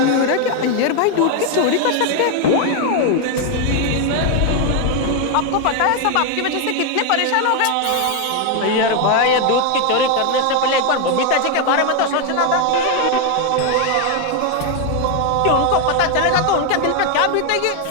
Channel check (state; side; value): different; both; correlation 0.01